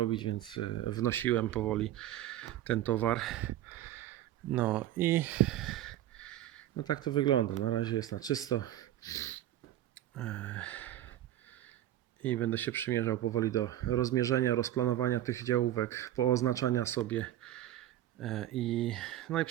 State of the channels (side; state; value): left; quieter; 13.0 dB